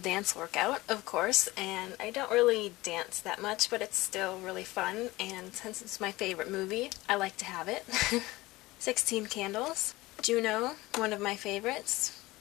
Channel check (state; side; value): quieter; right; 19.7 dB